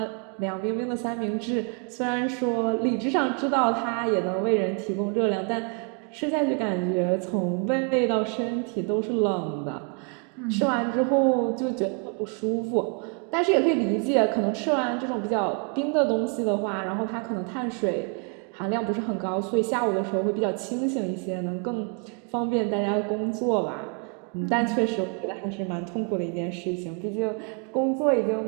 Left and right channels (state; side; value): quieter; left; 37.3 dB